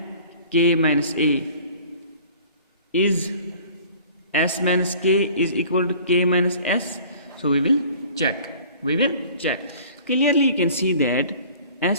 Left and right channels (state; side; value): inverted; both; correlation -0.48